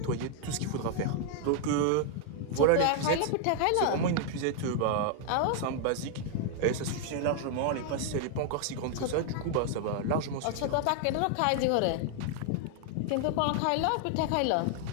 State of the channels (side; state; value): both; different; correlation 0.00